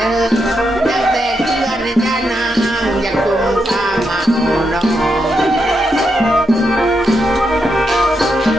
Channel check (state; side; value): normal; both; correlation 0.83